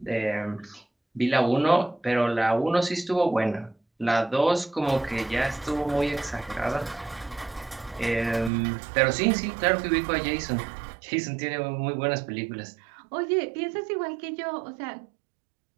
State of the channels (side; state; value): left; drops out; at 8.5 s